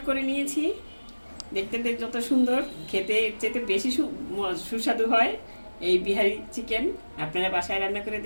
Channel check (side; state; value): both; inverted; correlation -1.00